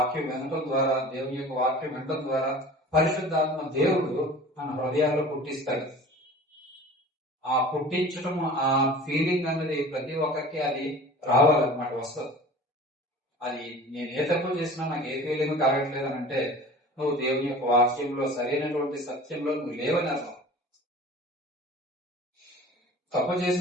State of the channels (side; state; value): both; normal; correlation 0.41